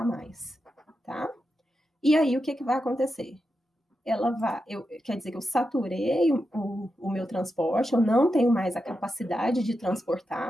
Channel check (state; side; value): normal; both; correlation 0.88